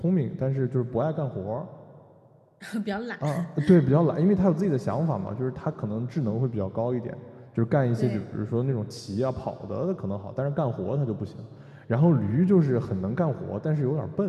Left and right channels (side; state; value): both; identical; correlation 1.00